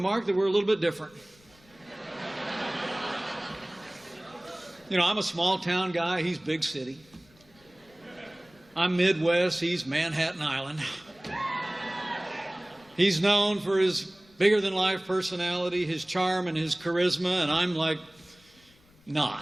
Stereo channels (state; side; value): noise; left; rumble, 29 dB below the sound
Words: that we're a little bit different. You know, I'm a small-town guy. He's big city. I'm Midwest. He's Manhattan Island. He's known for his bigger-than-life personality, his charm, and his charisma, and I'm like,